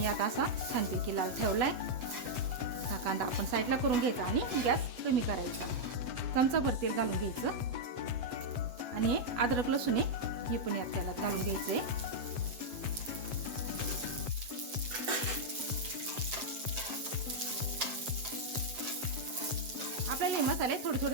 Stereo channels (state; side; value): late; left; 7.7 ms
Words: आता असा छानपैकी लाल ठेवलाय। हा कांदा आपण साईडला करून घ्यायचा आणि गॅस कमी करायचा। चमचाभर तेल घालून घ्यायचं आणि हे अद्रक लसूण हे पण यात तेलात घालून घ्यायचंय। आपल्याला हे मसाले थोडे थोडे